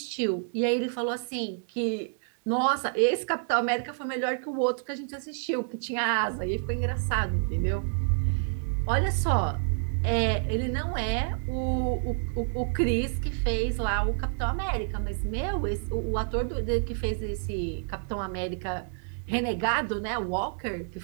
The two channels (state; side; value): silent; left; digital silence